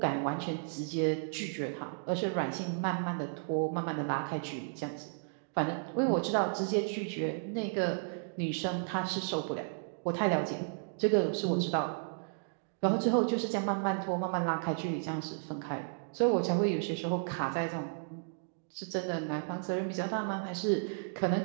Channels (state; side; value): silent; left; digital silence